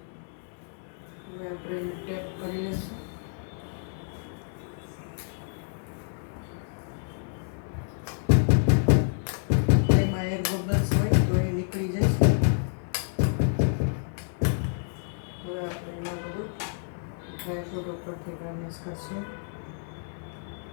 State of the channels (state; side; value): silent; right; 59 dB below the other